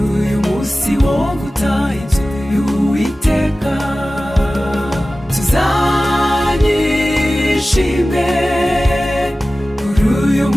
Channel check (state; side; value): normal; both; correlation 0.96